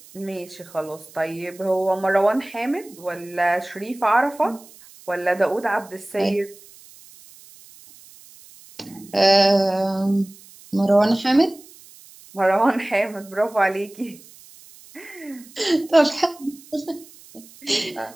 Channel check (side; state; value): right; noise; hiss, 22 dB below the sound